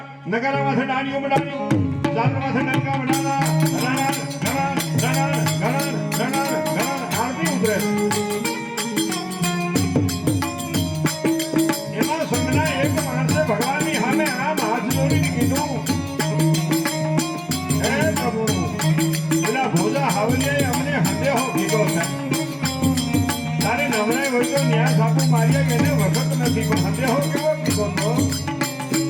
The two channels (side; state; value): both; identical; correlation 1.00